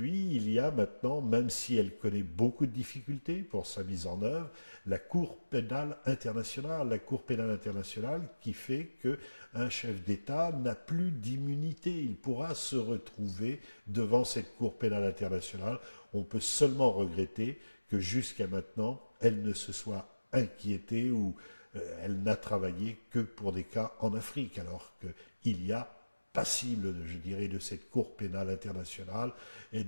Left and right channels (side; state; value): both; inverted; correlation -1.00